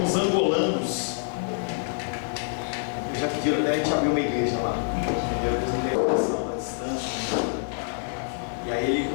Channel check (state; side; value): silent; right; 61 dB below the other